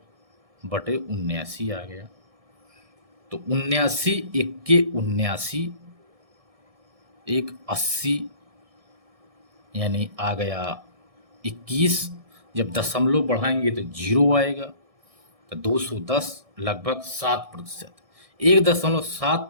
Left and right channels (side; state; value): left; late; 1.6 ms